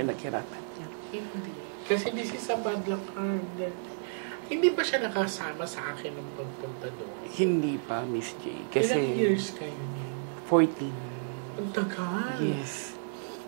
niya. Hindi. Kasi this is a bad luck card. Hindi ba siya nakasama sa akin ng pagpunta doon? Hindi pa, Miss J. Kasi Ilang years kayo niyan? 14. Ang tagal. Yes.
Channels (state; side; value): silent; left; digital silence